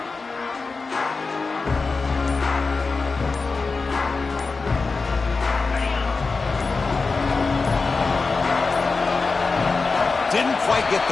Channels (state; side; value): quieter; right; 4.2 dB